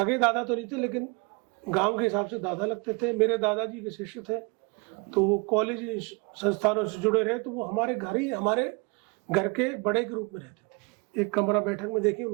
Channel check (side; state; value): left; quieter; 30.1 dB